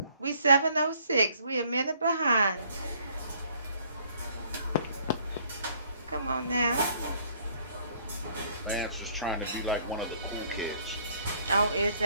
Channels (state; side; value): inverted; both; correlation -0.62